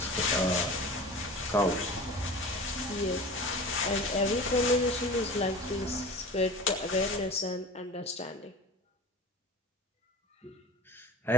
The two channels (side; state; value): both; normal; correlation 0.36